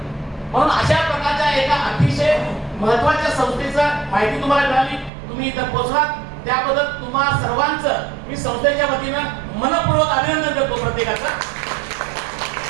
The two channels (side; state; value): left; drops out; at 5.1 s